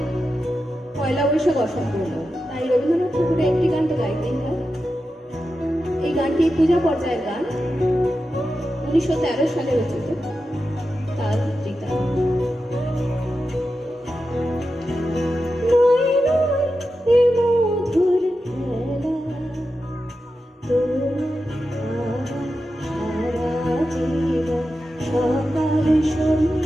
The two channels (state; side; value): normal; both; correlation 0.90